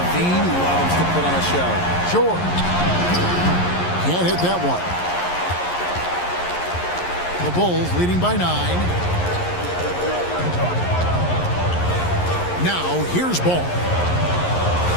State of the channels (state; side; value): late; right; 11 ms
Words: loves to put on a show. George can't hit that one. The Bulls leading by 9. Now here's Ball.